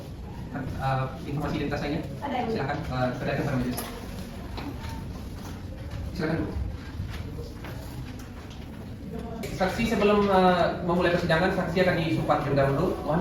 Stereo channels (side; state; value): both; identical; correlation 1.00